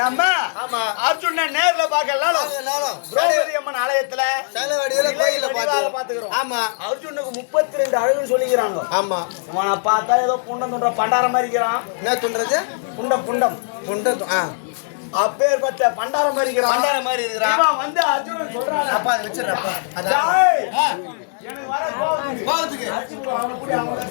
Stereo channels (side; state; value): right; silent; 61 dB below the other